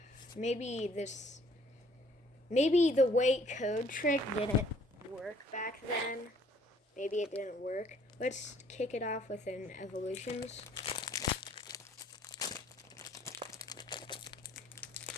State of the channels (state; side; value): normal; both; correlation 0.60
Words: the weight code trick didn't work back then. Maybe it didn't work. Let's kick it off with an evolutions.